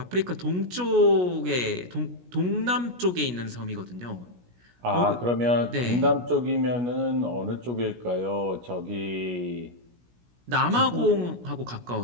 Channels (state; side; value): late; left; 17 ms